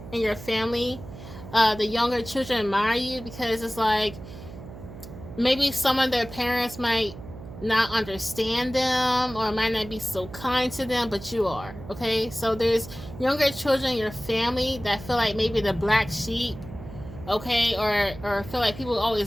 in your family, the younger children admire you because it's like maybe some of their parents might not understand them or might not be so kind to them, but you are, okay? So there's younger children in your family that feel like maybe the black sheep, okay, or feel like people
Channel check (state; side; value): noise; right; hum, 14 dB below the sound